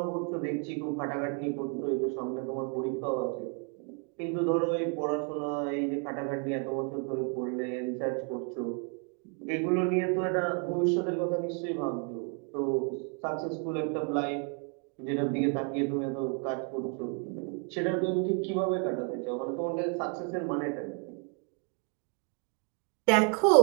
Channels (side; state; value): left; quieter; 38.2 dB